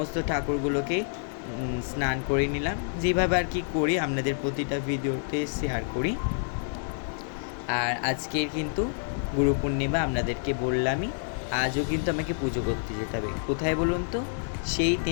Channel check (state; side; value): silent; right; digital silence